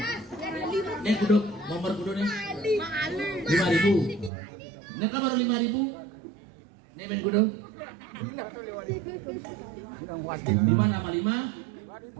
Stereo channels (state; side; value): drops out; left; at 4.3 s